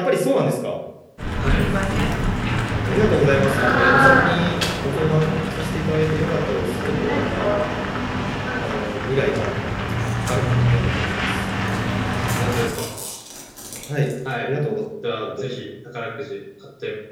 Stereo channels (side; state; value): both; identical; correlation 1.00